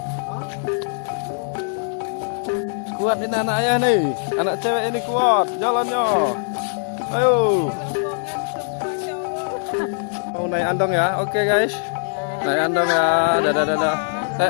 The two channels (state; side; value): silent; right; digital silence